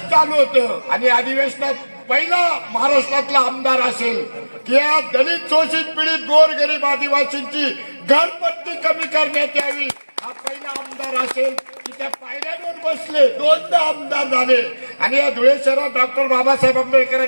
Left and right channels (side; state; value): both; inverted; correlation -1.00